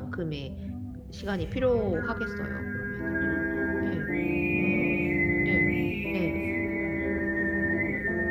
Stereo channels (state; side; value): identical; both; correlation 1.00